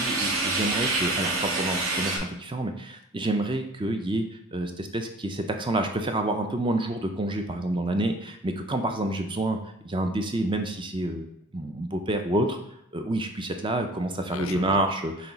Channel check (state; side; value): normal; both; correlation 0.47